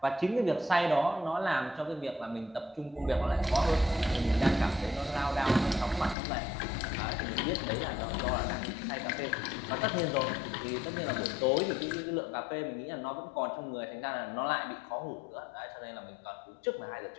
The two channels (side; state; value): right; drops out; at 6.2 s